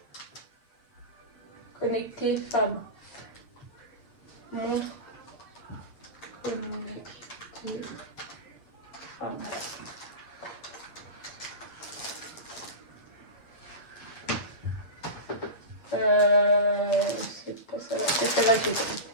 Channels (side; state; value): right; late; 8.1 ms